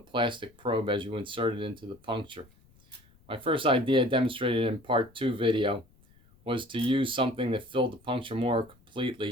probe as you insert it into the puncture. My first idea demonstrated in part 2 video was to use something that filled the puncture more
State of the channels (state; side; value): noise; left; rumble, 30 dB below the sound